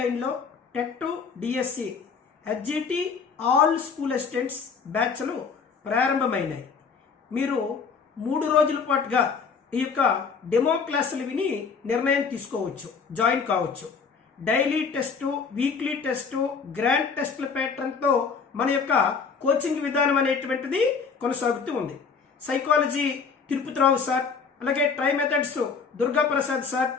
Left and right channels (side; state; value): right; quieter; 5.6 dB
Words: TET DSC HGT all school assistants బ్యాచ్లు ప్రారంభమైనాయి. మీరు 3 రోజుల పాటుగా ఈ యొక్క డెమో క్లాసులు విని నిర్ణయం తీసుకోవచ్చు, జాయిన్ కావచ్చు. Daily test, weekly test, grand టెస్ట్ల ప్యాటర్న్తో మన యొక్క కోచింగ్ విధానం అనేటువంటిది కొనసాగుతూ ఉంది. సైకాలజీ తిరుపతిరావు సార్, అలాగే tri methods Durga Prasad sir,